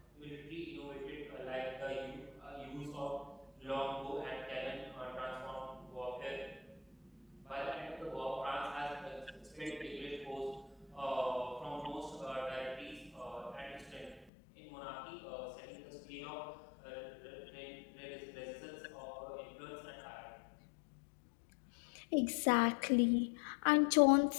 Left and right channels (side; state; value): right; drops out; at 14.3 s